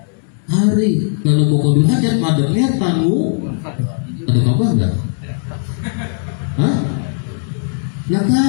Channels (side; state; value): right; silent; digital silence